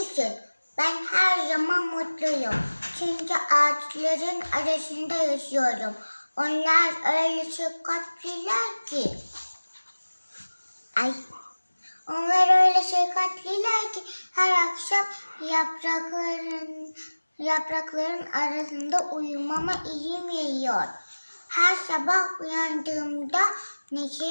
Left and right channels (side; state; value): both; inverted; correlation -1.00